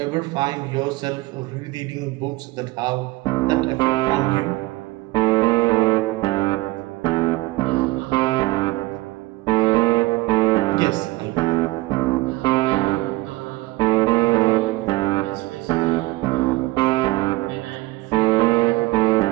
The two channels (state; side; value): quieter; left; 20.2 dB